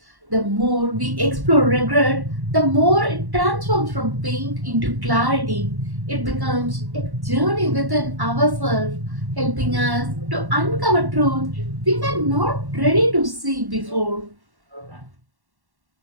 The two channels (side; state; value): left; late; 1.1 ms